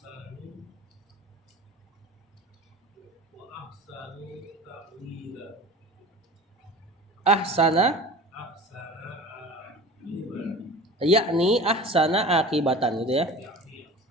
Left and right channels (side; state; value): both; normal; correlation 0.39